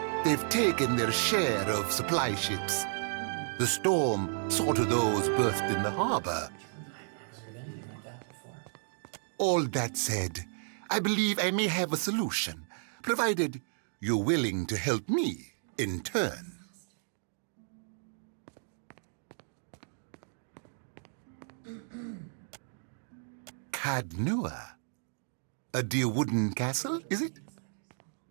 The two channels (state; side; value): silent; left; digital silence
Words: They've taken their share of supply ships. The storm saw to those berthed in the harbor. All that said, I believe I may have a solution, provided you're willing to help me in turn. Cadnua? A dear wooden castle, is it?